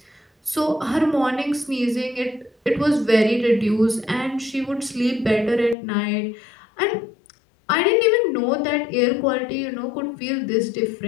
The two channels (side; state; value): right; drops out; at 5.8 s